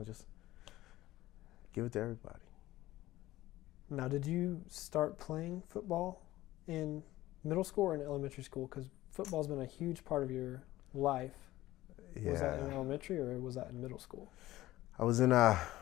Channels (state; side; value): quieter; right; 16.3 dB